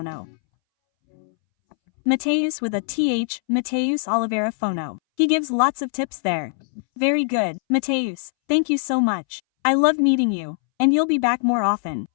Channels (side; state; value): right; silent; 63 dB below the other